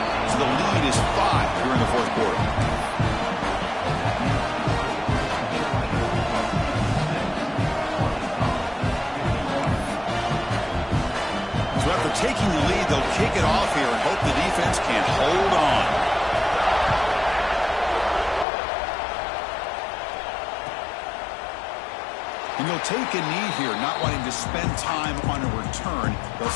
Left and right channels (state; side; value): drops out; right; at 18.4 s